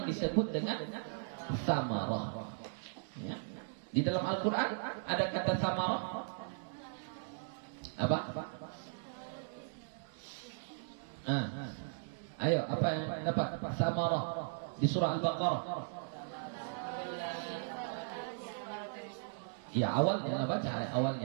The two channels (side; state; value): left; silent; digital silence